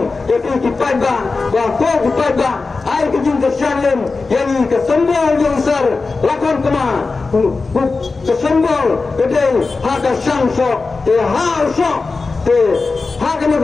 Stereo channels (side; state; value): right; quieter; 4.0 dB